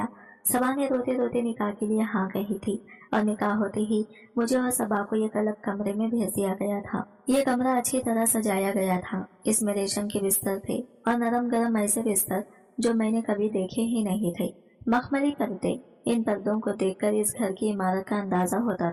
सबा ने रोते रोते निकाह के लिए हाँ कही थी और निकाह होते ही मुझे और सबा को एक अलग कमरे में भेज दिया गया था। ये कमरा अच्छी तरह सजाया गया था। इसमें रेशम के बिस्तर थे और नरम गरम ऐसे बिस्तर जो मैंने कभी देखे ही नहीं थे। मखमली पर्दे। इन पर्दों को देखकर इस घर की इमारत का अंदाजा होता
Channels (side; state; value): both; identical; correlation 1.00